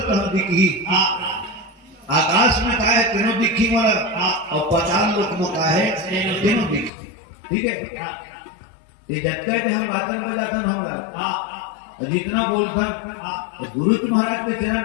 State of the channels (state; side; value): drops out; right; at 6.9 s